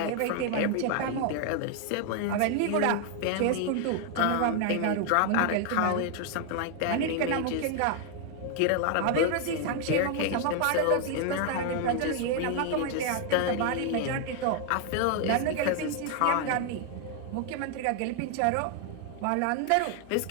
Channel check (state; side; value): different; both; correlation 0.00